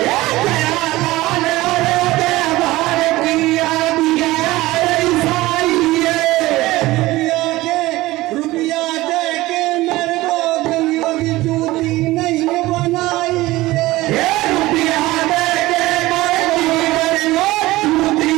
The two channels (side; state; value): left; quieter; 18.4 dB